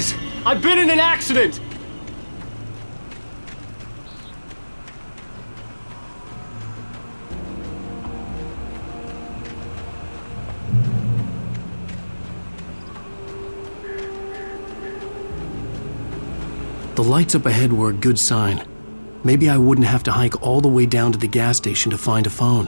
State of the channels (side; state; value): both; inverted; correlation -1.00